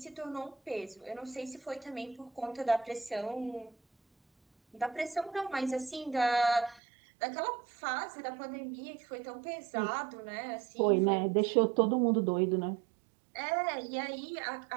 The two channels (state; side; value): drops out; left; at 6.8 s